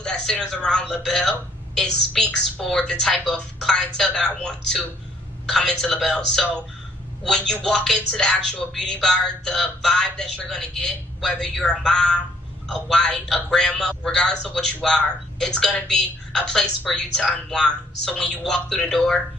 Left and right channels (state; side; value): normal; both; correlation 0.65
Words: that centers around LaBelle, it speaks for the type of clientele that I want to come into LaBelle. So when you walk into the actual beauty bar, the vibe that you're going to get, whether you're a mom, a wife, a grandma, regardless of what you are, it's going to be a place for you to unwind. So when you walk through the door,